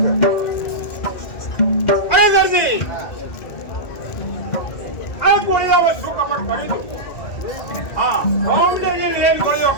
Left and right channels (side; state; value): right; late; 2.0 ms